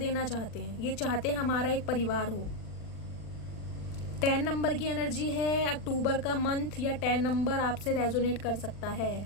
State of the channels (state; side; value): late; right; 40 ms